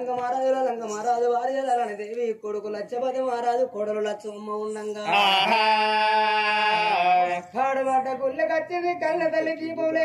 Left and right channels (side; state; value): both; identical; correlation 1.00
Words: మహారాజు వారి లలని దేవి కొడుకు లచ్చపతి మహారాజు కొడలు లచ్చమ్మ ఉండంగా కాడబడ్డ గుళ్ళకచ్చింది కళ్ళ తల్లి దీపం